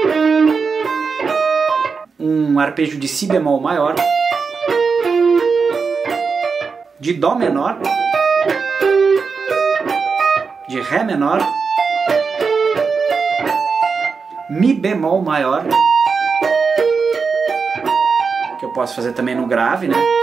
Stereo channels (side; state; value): left; quieter; 5.1 dB